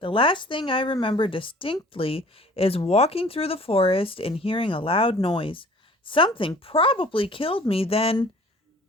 last thing I remember distinctly is walking through the forest and hearing a loud noise. Something probably killed me then,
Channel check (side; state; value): both; normal; correlation 0.50